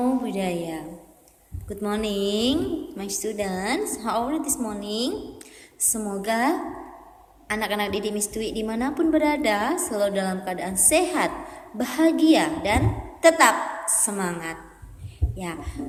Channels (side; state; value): both; identical; correlation 1.00